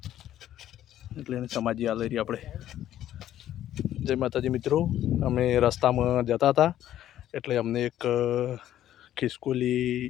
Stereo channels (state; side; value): quieter; right; 12.1 dB